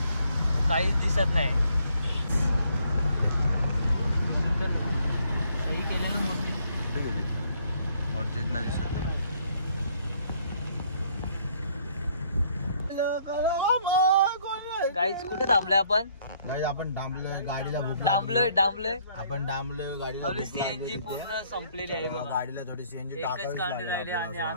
काहीच दिसत नाही. सही केलेलं मोठी दिसत गाईच. कुठे थांबलोय आपण? आपण डांबलोय गाडीला. डांबलोय आपण डांबलोय गाडीला. आपली सीएनजी पूर्ण संपलेली आहे बघा. गाडीला थोडी सीएनजी एकच कांडी राहिली आणि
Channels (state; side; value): inverted; both; correlation -0.66